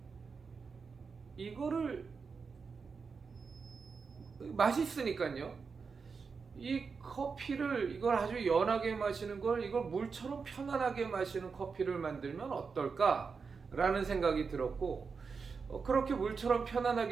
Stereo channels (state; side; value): quieter; left; 5.2 dB